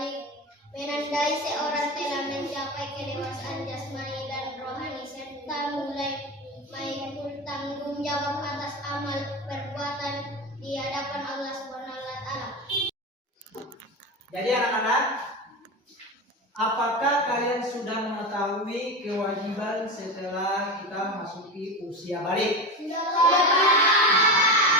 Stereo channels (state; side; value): normal; both; correlation 0.23